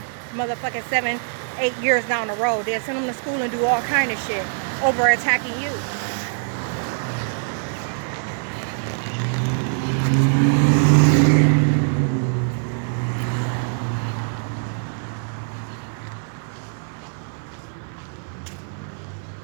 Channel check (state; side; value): silent; left; 63 dB below the other